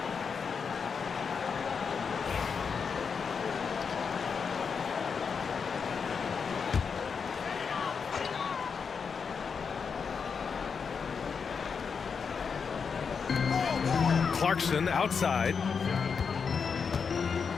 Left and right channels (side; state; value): right; quieter; 5.9 dB